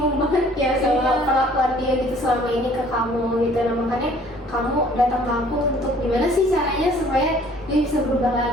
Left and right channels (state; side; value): normal; both; correlation 0.55